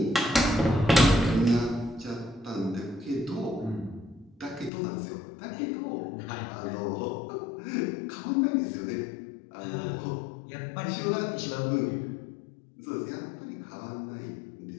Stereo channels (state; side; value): drops out; right; at 4.7 s